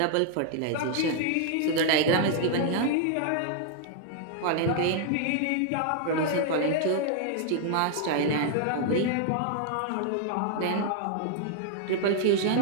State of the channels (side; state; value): both; different; correlation -0.01